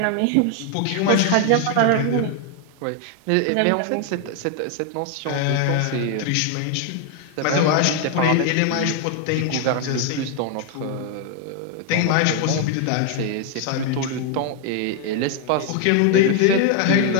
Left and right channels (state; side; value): different; both; correlation 0.01